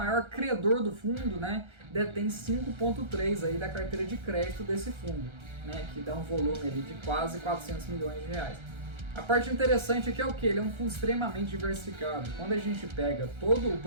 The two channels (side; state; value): left; late; 1.3 ms